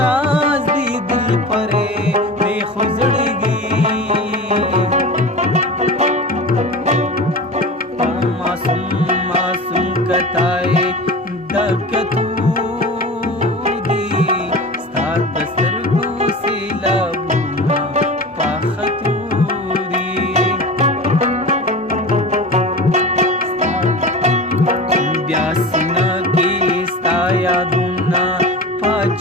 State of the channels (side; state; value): both; normal; correlation 0.32